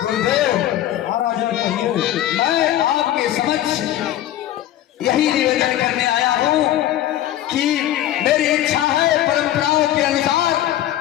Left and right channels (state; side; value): quieter; right; 12.9 dB